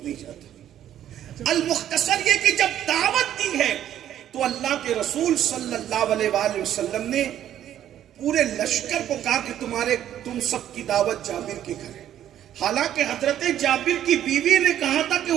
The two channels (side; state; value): left; quieter; 11.1 dB